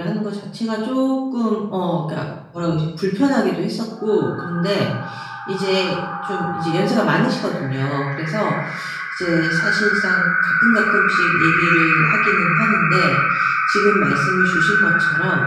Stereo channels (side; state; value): both; identical; correlation 1.00